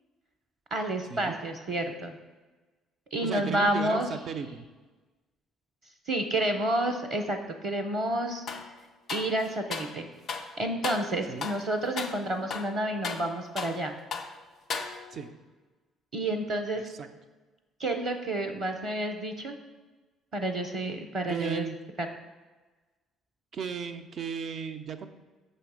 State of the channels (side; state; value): both; normal; correlation 0.57